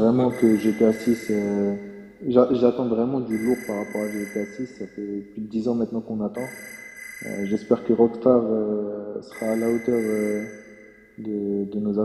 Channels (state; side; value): identical; both; correlation 1.00